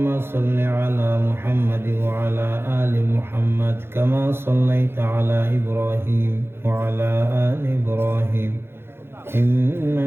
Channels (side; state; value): left; late; 0.11 ms